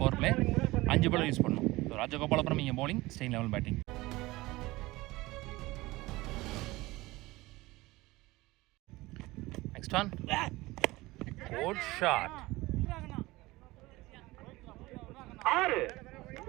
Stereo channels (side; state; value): left; quieter; 20.0 dB